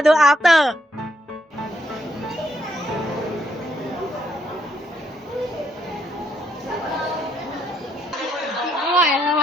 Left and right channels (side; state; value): both; normal; correlation 0.73